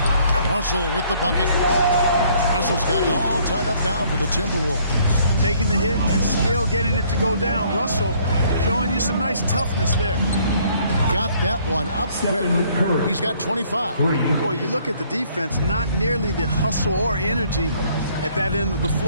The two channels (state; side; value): inverted; both; correlation -0.62